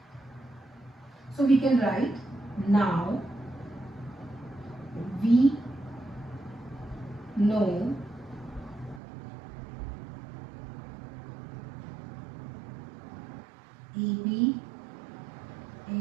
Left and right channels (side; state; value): left; drops out; at 9.0 s